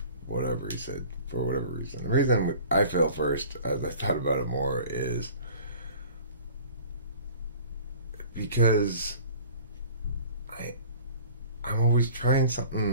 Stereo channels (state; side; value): inverted; both; correlation -0.45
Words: whatever he said for whatever reason. The reason I fail first, as I thought about it more, is because I'm always trying